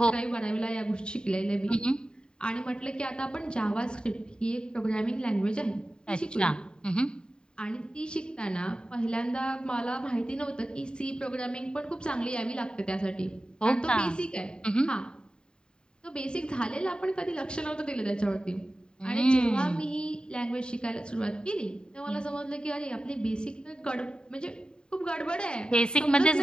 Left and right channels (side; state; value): right; late; 0.048 ms